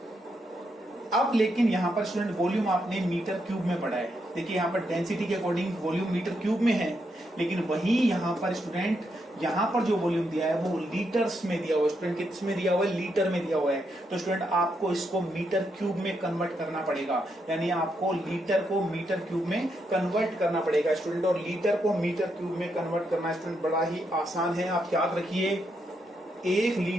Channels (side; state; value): both; normal; correlation 0.80